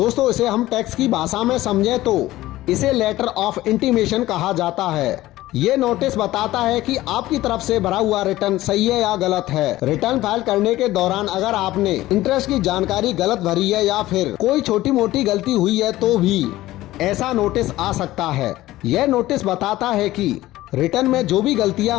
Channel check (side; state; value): right; quieter; 16.3 dB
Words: इसे हम टैक्स की भाषा में समझें तो इसे लेटर ऑफ इंटीमेशन कहा जाता है। ये नोटिस बताता है कि आपकी तरफ से भरा हुआ रिटर्न सही है या गलत है। रिटर्न फाइल करने के दौरान अगर आपने इंटरेस्ट की जानकारी गलत भरी है या फिर कोई छोटी मोटी गलती हुई है तो भी ऐसा नोटिस आ सकता है। यह नोटिस बताता है कि रिटर्न में जो भी गलतियां